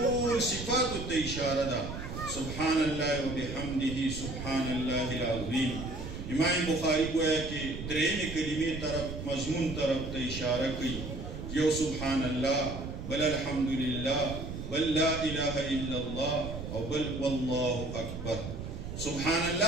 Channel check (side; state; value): right; noise; rumble, 8 dB below the sound